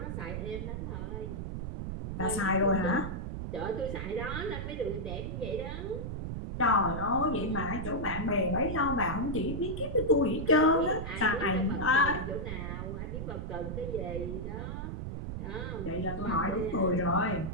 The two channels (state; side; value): noise; right; rumble, 5 dB below the sound